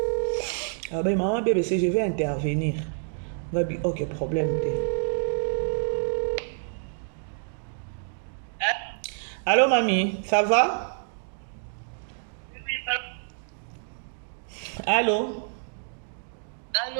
abe maman BBC je vais intervenir ngabi ok problème te. Allô mamie, ça va? Allô?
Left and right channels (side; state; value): left; silent; digital silence